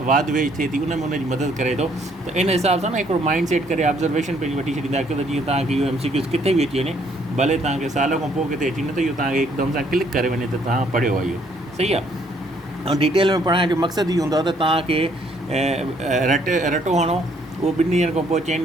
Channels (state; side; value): normal; both; correlation 0.66